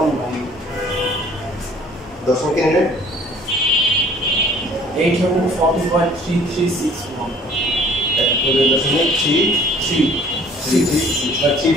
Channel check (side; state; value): both; normal; correlation 0.55